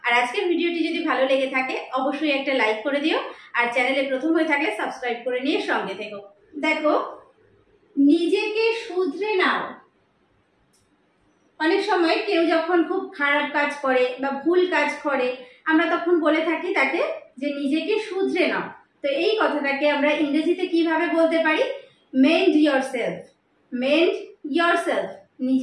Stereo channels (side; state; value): both; identical; correlation 1.00